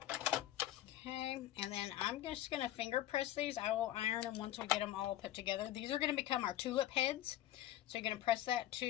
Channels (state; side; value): quieter; right; 13.5 dB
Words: Okay, and then I'm just going to finger press these. I will iron them once we get them all put together. These are going to become our tulip heads. So you're going to press that